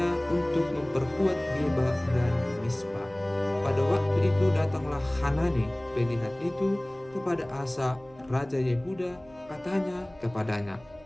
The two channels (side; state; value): right; noise; hum, 25 dB below the sound